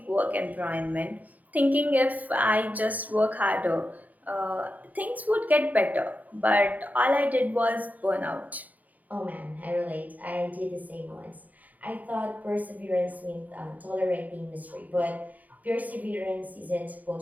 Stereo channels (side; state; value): left; late; 0.076 ms